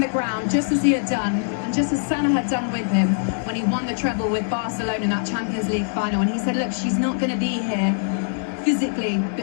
ground just as he had done, and just as Sana had done with him when he won the treble with Barcelona in that Champions League final. And he said, look, she's not going to be here physically,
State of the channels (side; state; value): right; silent; digital silence